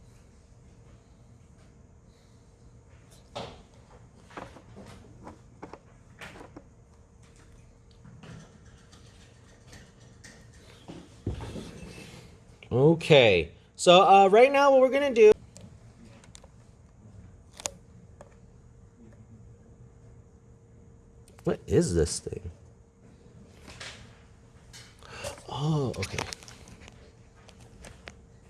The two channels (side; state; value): both; identical; correlation 1.00